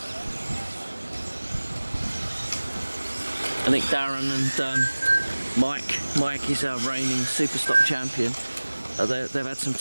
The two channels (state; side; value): inverted; both; correlation -1.00